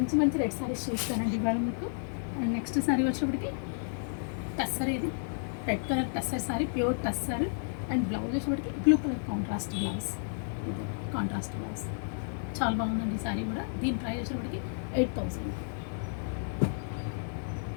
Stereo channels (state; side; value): silent; right; digital silence